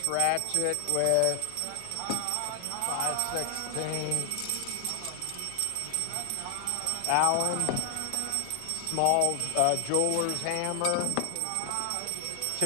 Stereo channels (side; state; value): both; different; correlation 0.00